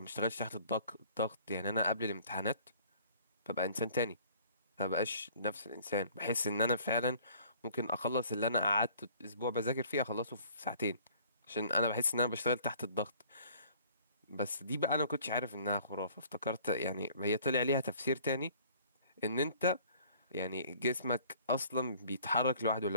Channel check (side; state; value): both; inverted; correlation -0.54